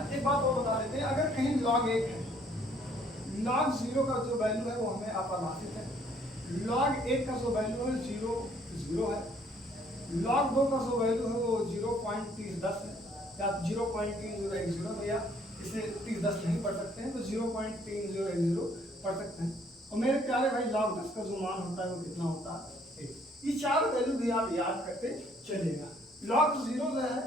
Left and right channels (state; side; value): normal; both; correlation 0.63